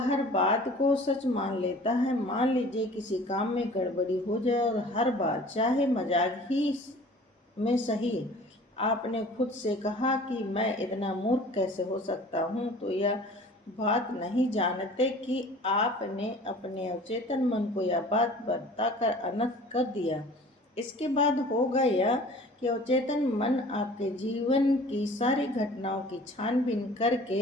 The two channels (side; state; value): both; normal; correlation 0.46